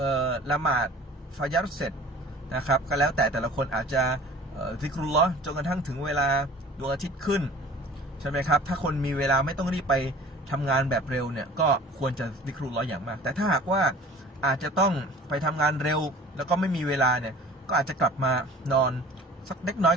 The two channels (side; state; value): both; normal; correlation 0.45